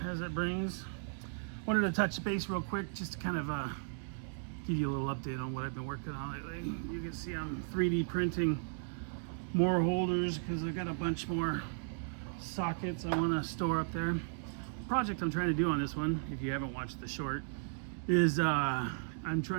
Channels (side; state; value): left; silent; digital silence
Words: as it brings. Wanted to touch base real quick just to kind of give you a little update on what I've been working on lately. You can see I'm 3D printing more holders because I got a bunch more sockets I want to store up there. The project I'm trying to do on this one, if you haven't watched the short, is I'm